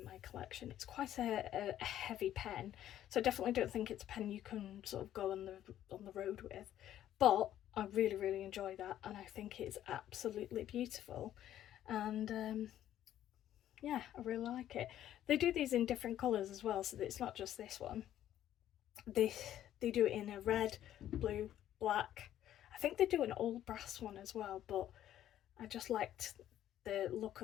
my collection. It's quite a heavy pen, so I definitely don't think it's a pen you can sort of go on the road with, but I really, really enjoy that, and I think it's absolutely beautiful. And yeah, I really like it. They do these in different colours as well, so that it's not just this one. They do it in a red, blue, black. I think they do an all brass one as well, but I just liked the look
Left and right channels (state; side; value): quieter; right; 11.9 dB